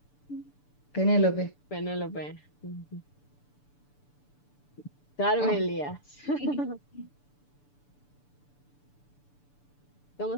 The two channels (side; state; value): right; late; 6.9 ms